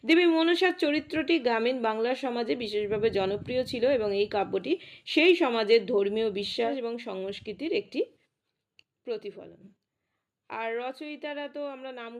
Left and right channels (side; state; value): both; identical; correlation 1.00